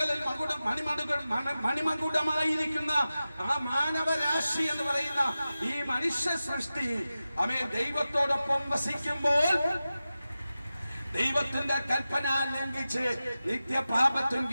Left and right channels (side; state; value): both; inverted; correlation -0.94